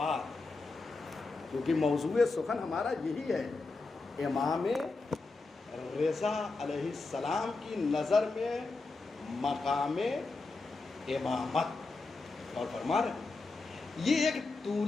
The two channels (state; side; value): quieter; right; 3.7 dB